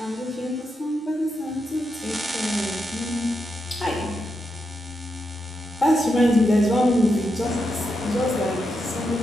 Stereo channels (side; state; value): both; normal; correlation 0.85